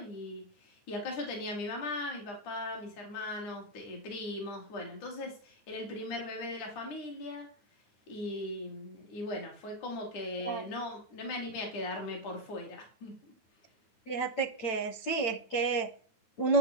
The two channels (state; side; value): late; right; 8.9 ms